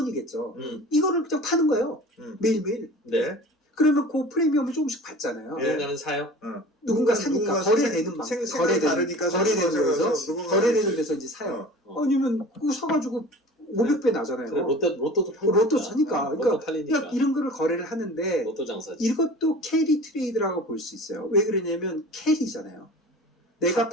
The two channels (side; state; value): both; normal; correlation 0.40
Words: 이거를 그냥 파는 거예요. 매일매일. 네. 그러면 그 프리미엄을 조금씩 받잖아요. 예. 누군가는 사요. 누군가 사니까 거래되는 다르니까 거래되는 데서 이제 사요. 아니면 그거 사가지고 500배 나잖아요. 그래, 로또도 팔니까. 로또 사니까. 로또 팔리니까. 그러니까 이런 거를 거래를 하는데 로또 장사지. 이것도 캐리 트레이드라고 볼 수 있어요. 왜 그러냐면 캐리잖아요. 내가